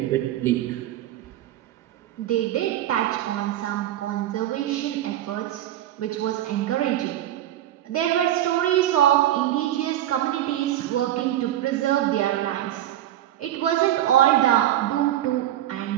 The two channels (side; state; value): left; quieter; 12.8 dB